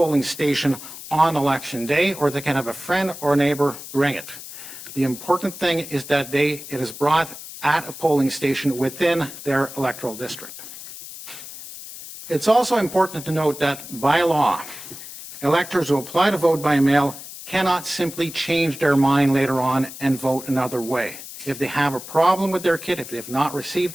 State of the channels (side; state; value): left; noise; hiss, 13 dB below the sound